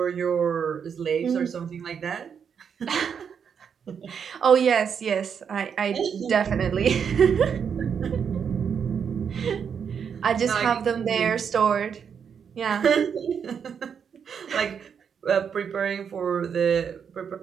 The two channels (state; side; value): quieter; left; 7.1 dB